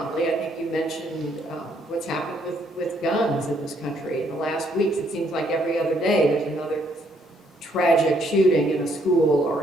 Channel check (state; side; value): normal; both; correlation 0.69